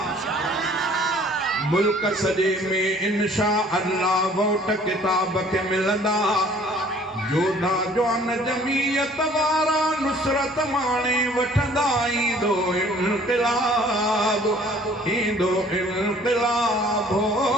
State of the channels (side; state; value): both; normal; correlation 0.54